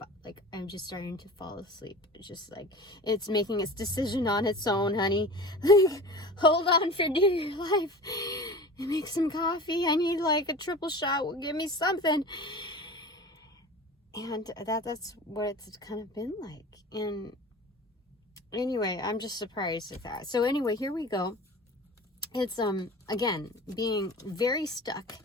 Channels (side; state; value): both; normal; correlation 0.37